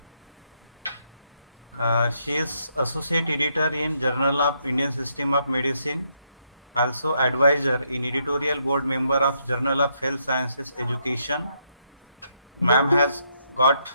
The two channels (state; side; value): inverted; both; correlation -0.76